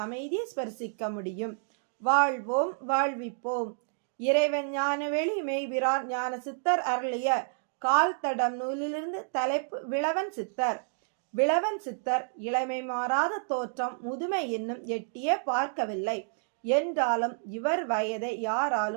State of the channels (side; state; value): left; silent; digital silence